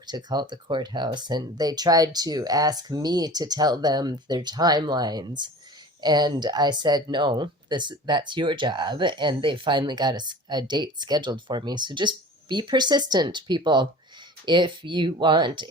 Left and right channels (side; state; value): both; normal; correlation 0.40